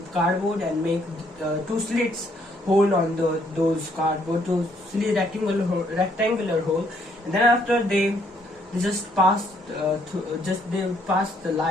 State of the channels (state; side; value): normal; both; correlation 0.68